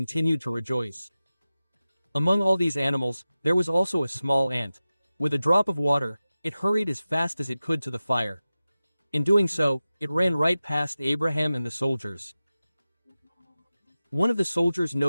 to rejoice. Among all these animals, there was also a small ant. With a drop of water, it hurried as fast as it could to the fire. In doing so, it ran right past Abraham and the soldiers. One of the soldiers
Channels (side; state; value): both; inverted; correlation -0.95